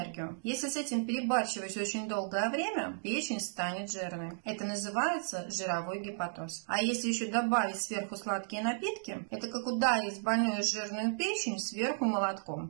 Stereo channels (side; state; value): left; silent; digital silence